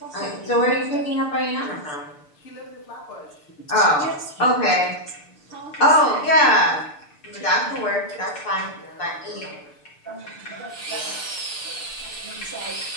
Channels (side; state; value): right; late; 6.7 ms